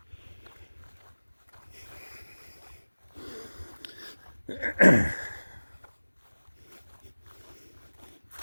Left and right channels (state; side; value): inverted; both; correlation -1.00